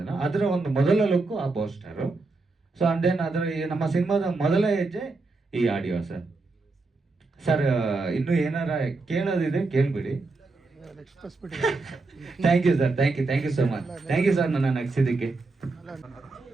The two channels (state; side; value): quieter; left; 3.6 dB